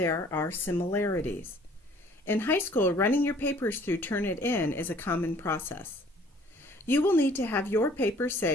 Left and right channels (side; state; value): both; normal; correlation 0.55